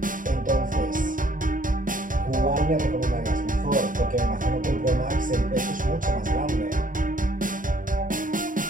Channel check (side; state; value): left; late; 0.39 ms